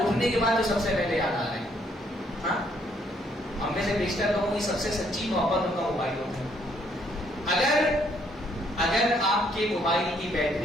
کے بعد جو سب سے پہلے یاد آ رہے ہیں. ہاں, ہم میں سے بیشتر لوگوں کی سب سے سچی محبت ان کا موبائل ہوتا ہے. اگر آپ کے موبائل کی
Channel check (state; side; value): normal; both; correlation 0.69